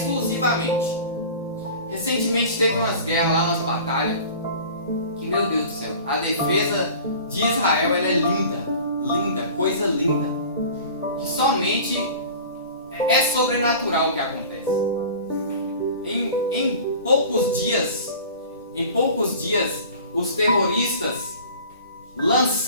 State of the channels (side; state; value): both; inverted; correlation -0.41